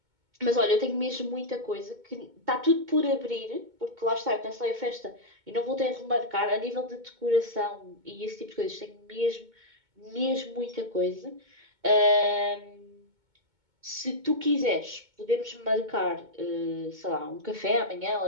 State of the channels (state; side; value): late; left; 2.2 ms